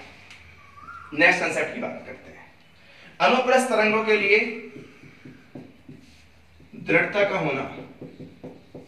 नेक्स्ट कंसेप्ट की बात करते हैं। अनुप्रस्थ तरंगों के लिए दृढ़ता का होना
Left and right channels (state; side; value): identical; both; correlation 1.00